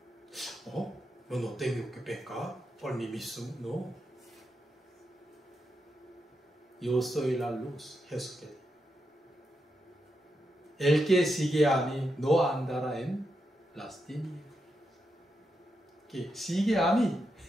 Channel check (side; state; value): both; normal; correlation 0.85